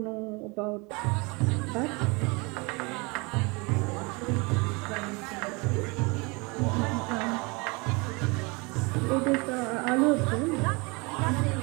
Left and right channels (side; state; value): left; quieter; 28.0 dB